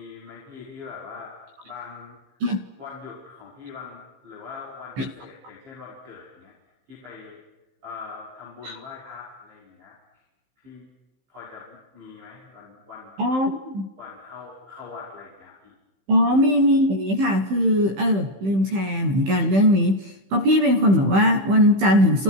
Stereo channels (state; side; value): late; left; 15 ms